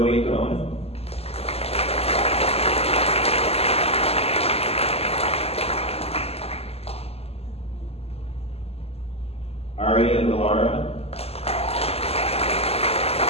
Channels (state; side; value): late; right; 0.29 ms